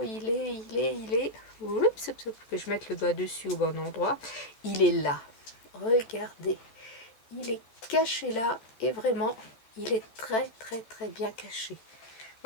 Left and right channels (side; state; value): right; late; 14 ms